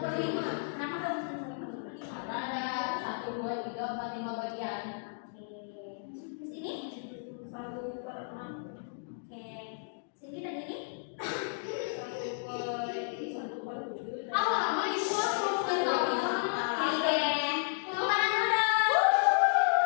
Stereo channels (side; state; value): right; silent; digital silence